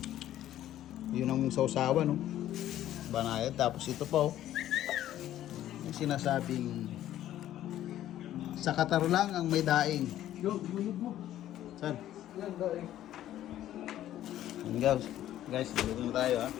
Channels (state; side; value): quieter; right; 12.6 dB